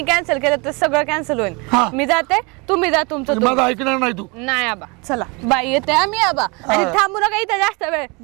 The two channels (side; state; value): left; quieter; 29.1 dB